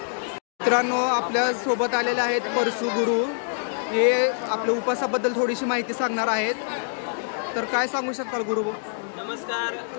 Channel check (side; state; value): right; silent; digital silence